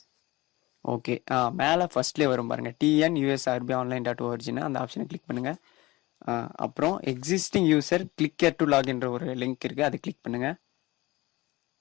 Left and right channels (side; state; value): right; quieter; 20.4 dB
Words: ஓகே, மேலே ஃபர்ஸ்ட்லேயே வரும் பாருங்கள், TNUSRBonline.orgன்னு அந்த ஆப்ஷனை கிளிக் பண்ணுங்கள். அப்புறம் எக்ஸிஸ்டிங் யூசர் கிளிக் டு லாகின்ற ஒரு லிங்க் இருக்குது, அது கிளிக் பண்ணுங்கள்.